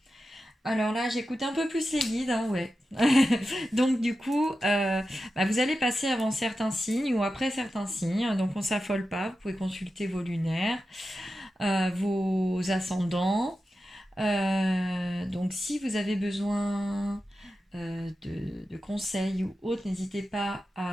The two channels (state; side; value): normal; both; correlation 0.92